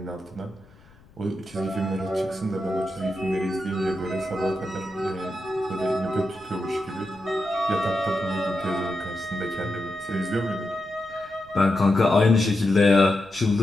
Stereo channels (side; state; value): left; noise; rumble, 28 dB below the sound